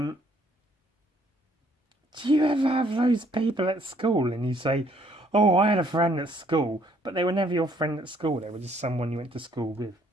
you ever have those people at school and you say, oh, I had a friend at school, but they were never your friend at school, they were just someone you went to school with?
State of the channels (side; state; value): both; normal; correlation 0.65